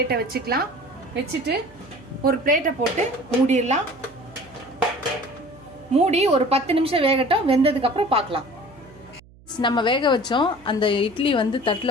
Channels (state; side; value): noise; right; hum, 25 dB below the sound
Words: வச்சுக்கலாம். வச்சுட்டு ஒரு பிளேட்டை போட்டு மூடிடலாம். மூடி ஒரு 10 நிமிஷம் வேகட்டும். வெந்ததுக்கப்புறம் பார்க்கலாம். நம்ம வேக வச்சோம் அந்த இட்லி தட்டில்